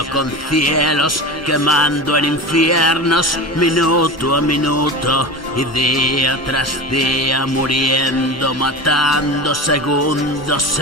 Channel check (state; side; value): normal; both; correlation 0.28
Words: con cielos, quemando en infiernos, minuto a minuto y día tras día, muriendo, matando segundos